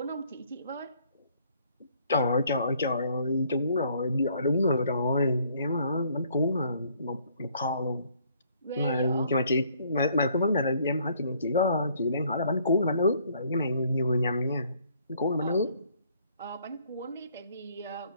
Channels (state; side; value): inverted; both; correlation -0.64